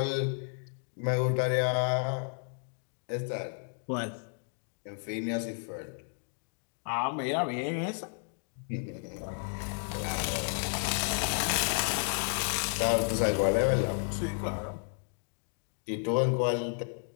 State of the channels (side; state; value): right; silent; 56 dB below the other